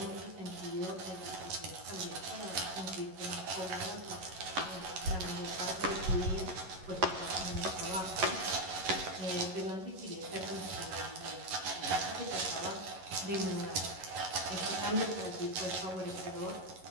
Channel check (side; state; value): left; late; 11 ms